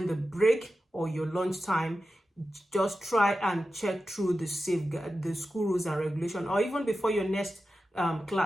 the break or your lunch time, just try and check through the school rules and regulation, or even before your next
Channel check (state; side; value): normal; both; correlation 0.92